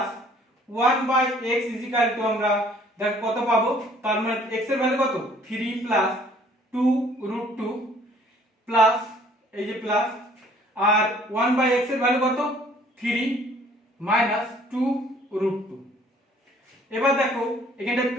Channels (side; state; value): both; normal; correlation 0.58